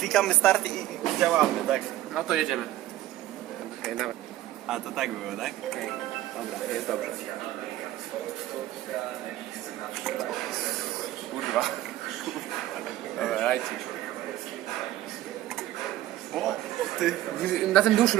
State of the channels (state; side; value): quieter; left; 14.5 dB